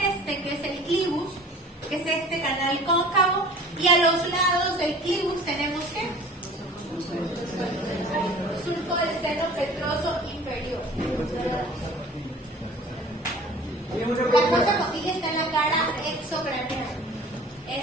que es el clivus, que es este canal cóncavo, y a los lados del clivus tenemos ¿qué? Surco del seno petroso inferior. La fosa condyle está en la cara exocraneal,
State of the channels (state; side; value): normal; both; correlation 0.45